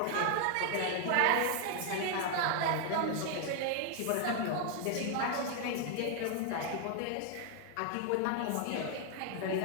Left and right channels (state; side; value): different; both; correlation 0.00